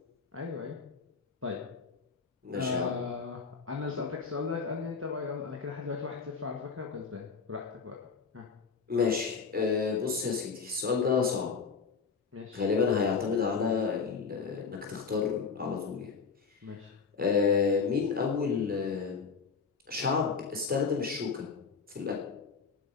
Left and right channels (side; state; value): right; quieter; 5.3 dB